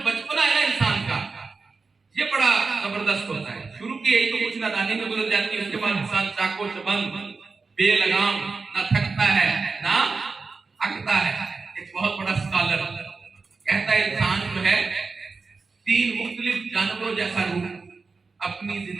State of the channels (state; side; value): quieter; left; 4.3 dB